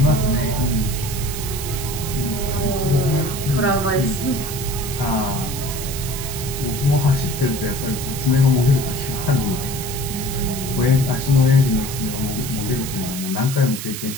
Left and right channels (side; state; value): right; noise; hiss, 7 dB below the sound